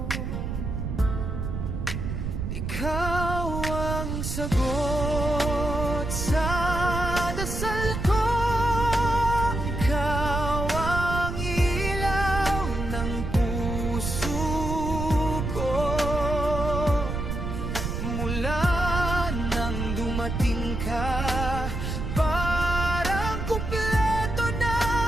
Ikaw ang sagot sa dasal ko. Ikaw ang ilaw ng puso ko. Mula nang dumating ka, parang kumpleto na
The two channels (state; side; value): noise; right; rumble, 4 dB below the sound